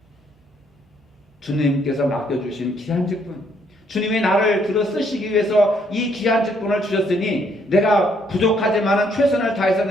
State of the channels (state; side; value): normal; both; correlation 0.69